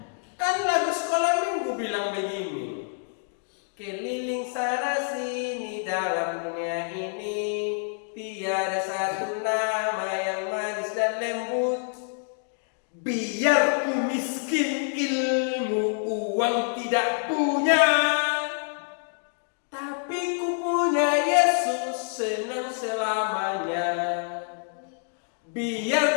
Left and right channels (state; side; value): silent; right; 60 dB below the other